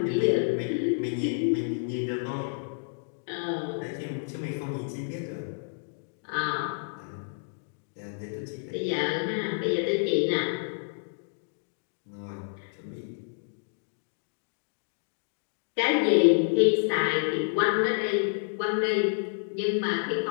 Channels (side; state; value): right; silent; digital silence